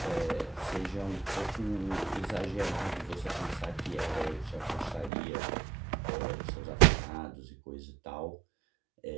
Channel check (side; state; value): left; drops out; at 5.1 s